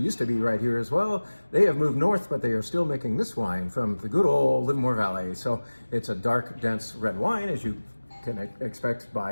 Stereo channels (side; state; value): both; inverted; correlation -1.00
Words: to be right here as well. They have moved north, but they are still making this wine from the good old Livermore Valley. So it's a dark, dense red wine, as you can expect